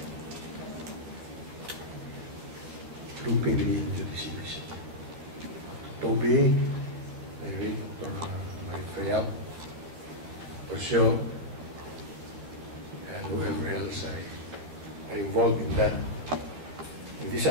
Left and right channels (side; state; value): left; late; 13 ms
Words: looping me into this initiative. Toby, Dr. Marifayap, Orsio, and whoever else are involved in that in this